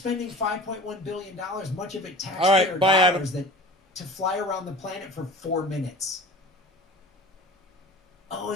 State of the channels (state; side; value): normal; both; correlation 0.40